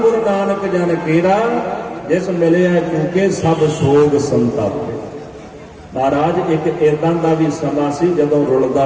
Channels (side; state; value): both; identical; correlation 1.00